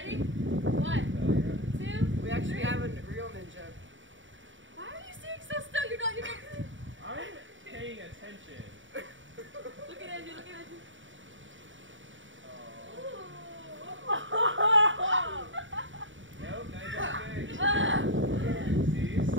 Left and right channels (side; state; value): left; late; 0.56 ms